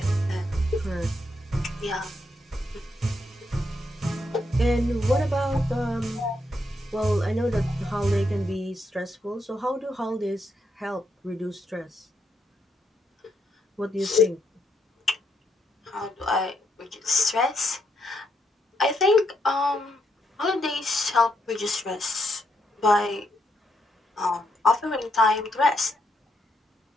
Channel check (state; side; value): normal; both; correlation 0.78